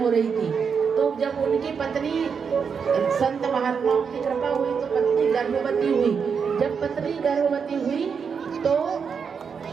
रही थी, तो जब उनकी पत्नी, संत महात्माओं की कृपा हुई तो पत्नी गर्भवती हुई। जब पत्नी गर्भवती हुई तो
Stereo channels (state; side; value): quieter; left; 6.3 dB